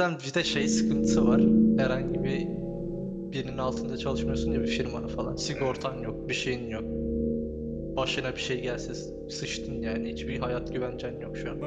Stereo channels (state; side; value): identical; both; correlation 1.00